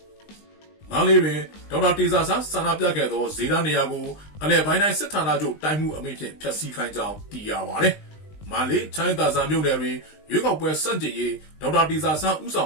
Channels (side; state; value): right; late; 20 ms